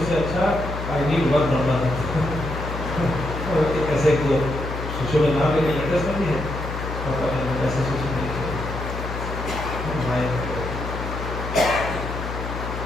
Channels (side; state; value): left; noise; hum, 6 dB below the sound